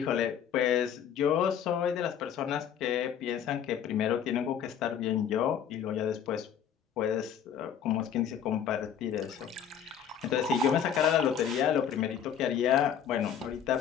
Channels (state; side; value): quieter; right; 8.6 dB